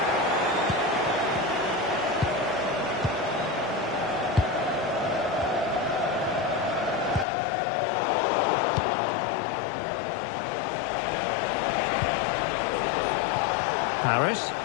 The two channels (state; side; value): drops out; right; at 7.2 s